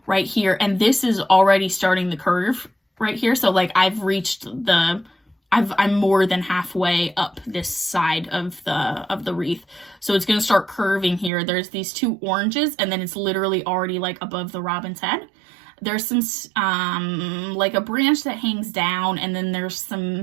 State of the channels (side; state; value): left; drops out; at 11.3 s